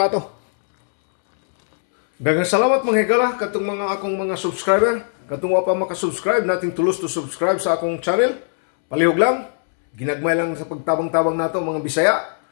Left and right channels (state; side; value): silent; right; 66 dB below the other